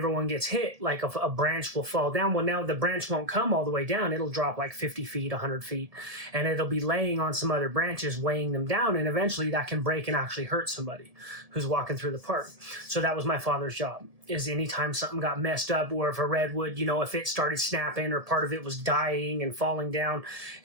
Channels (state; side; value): late; left; 1.7 ms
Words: gets hit, like a branch will fall down. Well, now the branch won't come all the way down. It'll drop like 50 feet, 100 feet. And it'll be laying on some other branches, weighing them down. And eventually that can break and actually hurt somebody who's walking through the park. So that was my father's job, is anytime something got messed up, or if a redwood, if it started snapping or part of it was dying and falling down,